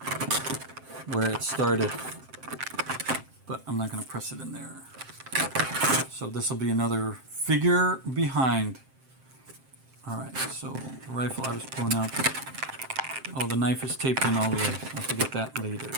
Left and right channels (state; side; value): late; left; 7.6 ms